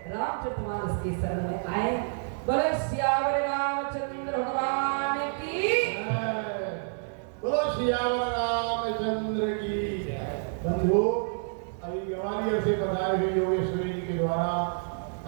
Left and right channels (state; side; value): silent; left; 59 dB below the other